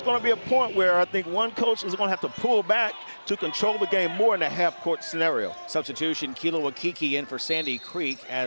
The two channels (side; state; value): both; inverted; correlation -1.00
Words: going to be a point where I think one coach is going to have to pull back to control the game more in a half-court scenario. Substitution, Kilo Akiki in for Sandy Creek